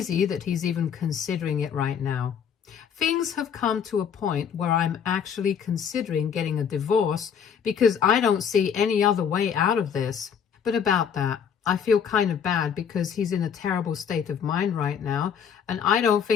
that he's even considering it right now. Things have come to a point where I'm actually considering getting a divorce because I don't see any other way out of this. But about that, I feel kind of bad because he's in a terrible state of mind right now, and I don't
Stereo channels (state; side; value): quieter; right; 7.6 dB